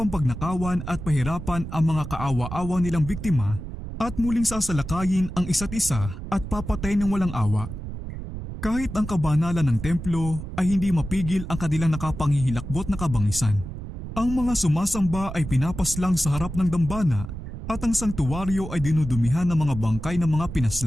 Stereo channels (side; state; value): right; noise; rumble, 9 dB below the sound